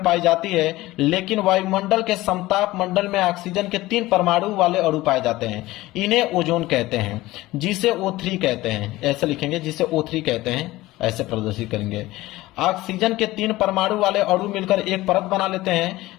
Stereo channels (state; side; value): quieter; right; 18.1 dB